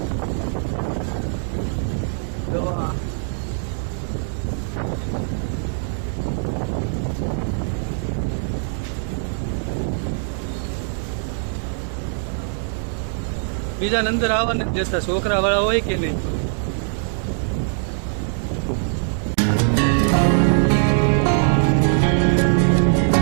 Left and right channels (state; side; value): silent; left; 60 dB below the other